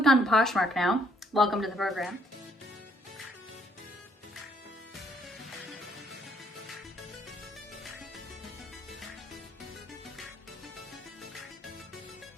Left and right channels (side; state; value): both; normal; correlation 0.68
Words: on to Poshmark now. Welcome to the program.